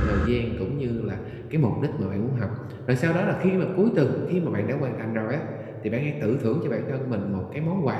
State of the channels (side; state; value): both; identical; correlation 1.00